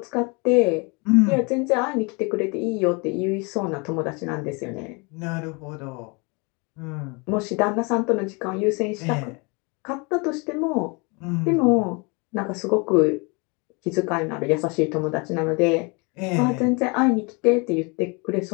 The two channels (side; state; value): right; quieter; 30.5 dB